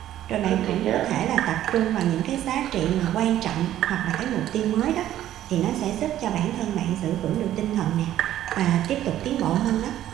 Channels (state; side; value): quieter; left; 12.5 dB